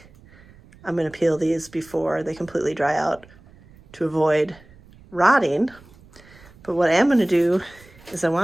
I'm going to peel these before they completely dry out to avoid rotting. But what I am going to do is I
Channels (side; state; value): right; noise; rumble, 25 dB below the sound